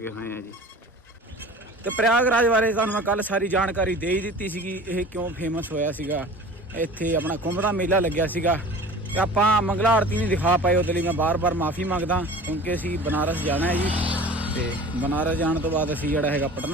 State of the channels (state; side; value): normal; both; correlation 0.41